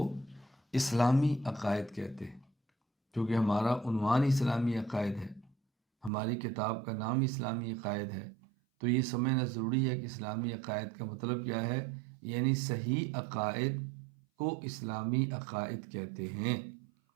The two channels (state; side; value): drops out; left; at 6.1 s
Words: اسلامی عقائد کہتے ہیں، کیونکہ ہمارا عنوان اسلامی عقائد ہے، ہماری کتاب کا نام اسلامی عقائد ہے، تو یہ سمجھنا ضروری ہے کہ اسلامی عقائد کا مطلب کیا ہے۔ یعنی صحیح عقائد کو اسلامی عقائد کہتے ہیں،